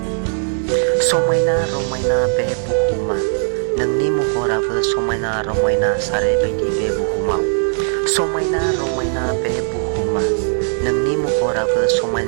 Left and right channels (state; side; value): silent; left; digital silence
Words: समायना रमायना बे बुहुमा नोंनि महराबो समायना रमायना सारैबायदि बे बुहुमाव। समायना रमायना बे बुहुमा नोंनि महराबो